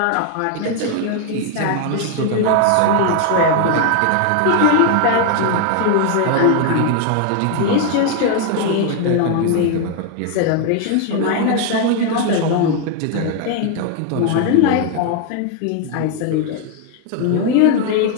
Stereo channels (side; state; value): both; different; correlation 0.00